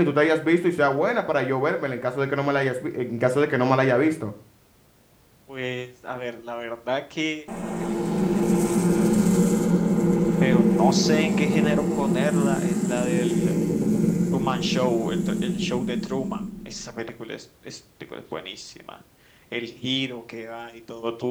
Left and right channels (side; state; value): both; identical; correlation 1.00